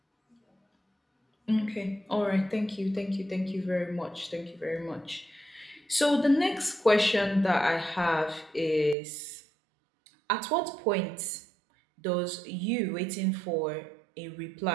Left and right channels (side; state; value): left; drops out; at 9.0 s